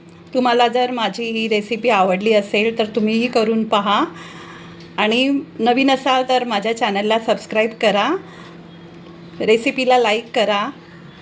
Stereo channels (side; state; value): both; identical; correlation 1.00